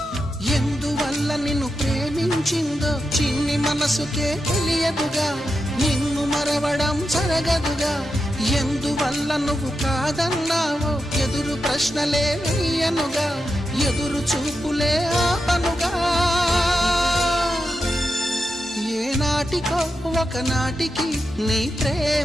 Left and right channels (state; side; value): normal; both; correlation 0.88